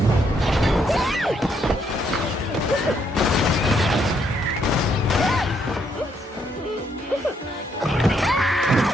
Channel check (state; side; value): normal; both; correlation 0.73